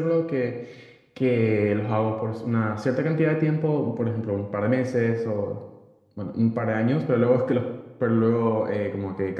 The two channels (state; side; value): identical; both; correlation 1.00